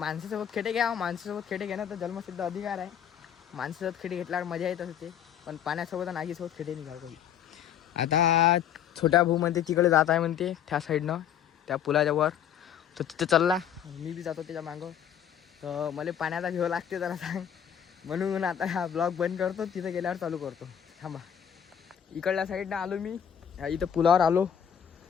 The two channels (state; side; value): quieter; right; 9.1 dB